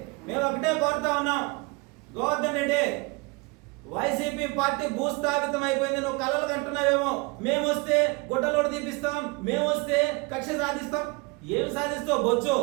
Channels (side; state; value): left; quieter; 28.0 dB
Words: మేము ఒకటే కోరుతా ఉన్నాం, గోవర్ధన్ రెడ్డి వైసీపీ పార్టీ భూస్థాపితం అయిపోయింది. నువ్వు కలలు కంటున్నావేమో, మేము వస్తే గుడ్డలోడు తీపిస్తాం, మేము వస్తే కక్ష సాధిస్తాం. ఏం సాధిస్తావు బొచ్చు?